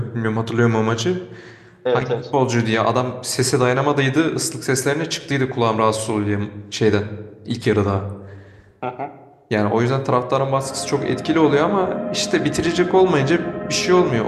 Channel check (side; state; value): both; identical; correlation 1.00